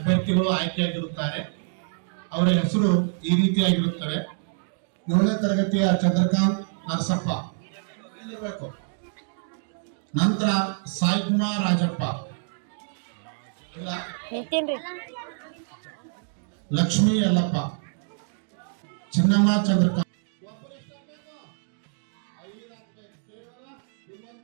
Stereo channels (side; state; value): left; silent; digital silence